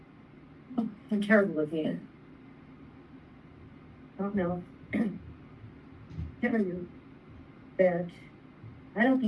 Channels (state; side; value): identical; both; correlation 1.00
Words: I'm terrible at the I don't know. Tell you that I don't